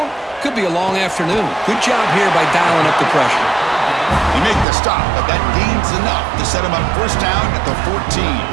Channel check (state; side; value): drops out; left; at 4.7 s